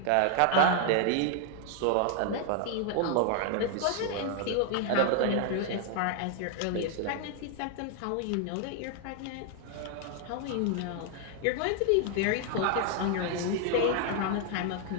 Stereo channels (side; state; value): both; different; correlation 0.00